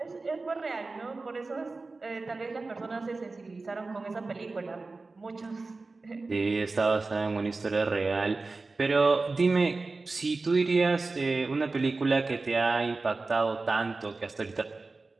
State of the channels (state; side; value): quieter; left; 3.6 dB